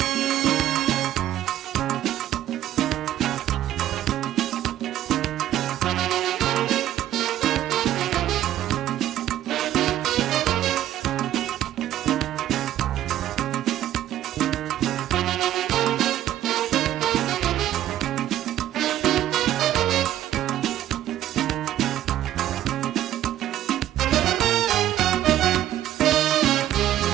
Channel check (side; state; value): left; quieter; 12.6 dB